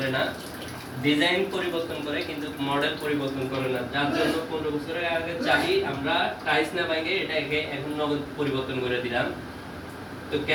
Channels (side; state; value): both; identical; correlation 1.00